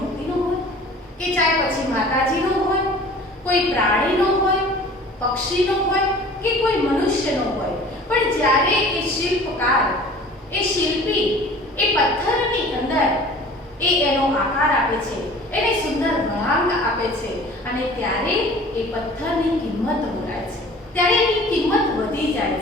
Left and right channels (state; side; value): normal; both; correlation 0.45